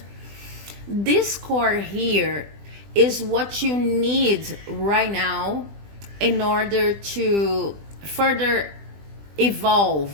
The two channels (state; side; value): late; left; 20 ms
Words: This core here is what you need right now in order to further